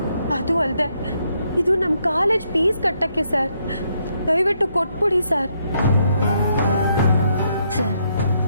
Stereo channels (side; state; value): both; inverted; correlation -0.75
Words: ಅದು ಅಲ್ಲದೆ ಇದು ನಮ್ಮ ಕಾಲೇಜ್ ಫೀಸ್ ಕಟ್ಟಕ್ಕೆ ಸರ್. ದಯವಿಟ್ಟು ಕೊಟ್ಬಿಡಿ ಸರ್. ಸರ್